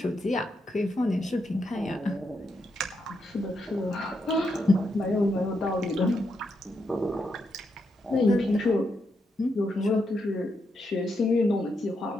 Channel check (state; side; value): normal; both; correlation 0.82